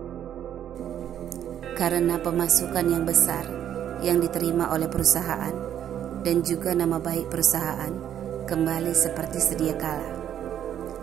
Karena pemasukan yang besar yang diterima oleh perusahaan dan juga nama baik perusahaan kembali seperti sedia kala,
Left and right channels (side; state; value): left; quieter; 10.2 dB